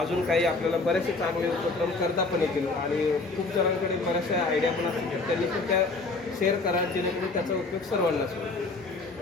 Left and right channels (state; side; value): quieter; right; 3.6 dB